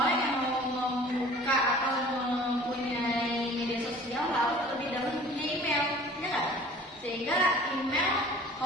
orang yang mau membuka atau mempunyai media sosial harus terlebih dahulu punya email, ya nggak? Sehingga email,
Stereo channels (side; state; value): both; normal; correlation 0.47